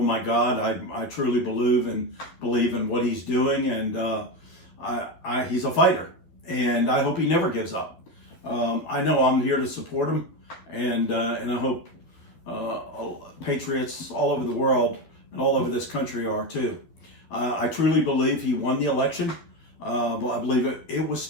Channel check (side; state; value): right; late; 12 ms